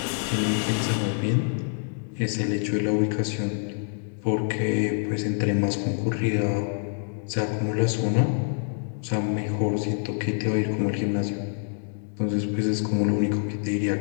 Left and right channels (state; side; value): silent; right; 61 dB below the other